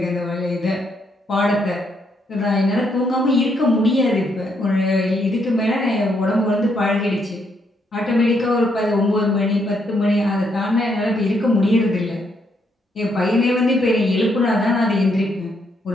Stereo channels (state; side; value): normal; both; correlation 0.75